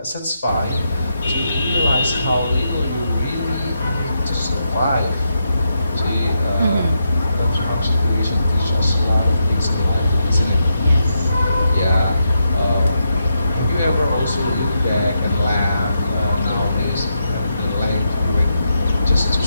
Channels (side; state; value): both; inverted; correlation -0.83